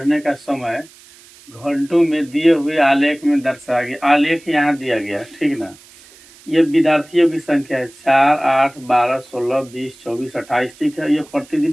का समय घंटों में दिए हुए आलेख में दर्शाया गया। आलेख यहाँ दिया गया, ठीक ना। ये विद्यार्थियों की संख्या है 4, 8, 12, 16, 20, 24, 28, ठीक है। ये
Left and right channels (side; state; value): right; noise; hiss, 24 dB below the sound